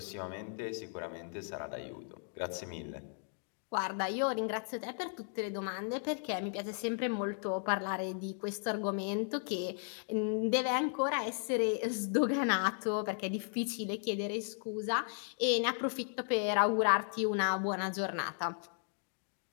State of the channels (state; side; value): silent; right; 54 dB below the other